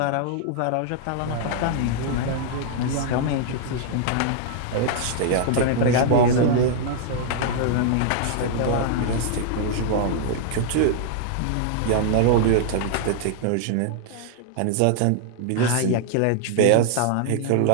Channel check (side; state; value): both; different; correlation 0.00